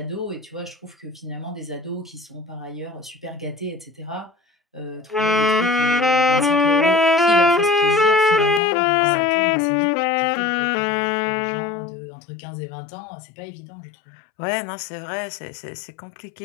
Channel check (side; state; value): right; drops out; at 8.6 s